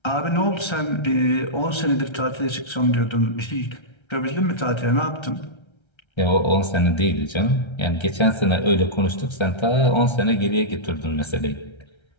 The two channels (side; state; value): right; late; 1.3 ms